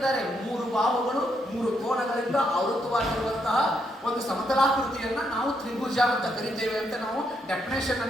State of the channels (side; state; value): both; normal; correlation 0.78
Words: 3 ಬಾಹುಗಳು 3 ಕೋಣಗಳಿಂದ ಆವೃತವಾಗಿರುವಂತಹ ಒಂದು ಸಮತಲಾಕೃತಿಯನ್ನ ನಾವು ತ್ರಿಭುಜ ಅಂತ ಕರಿತೇವೆ ಅಂತ ನಾವು ಡೆಫಿನೇಷನ್